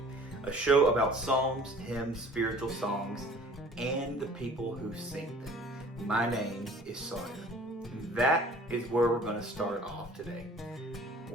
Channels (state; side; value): normal; both; correlation 0.49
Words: a show about psalms, hymns, spiritual songs, and the people who sing them. My name is Sawyer. That is where we're going to start off today.